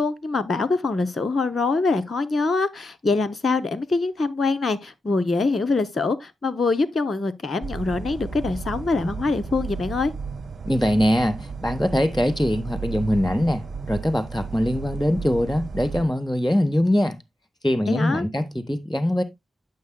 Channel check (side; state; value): both; normal; correlation 0.89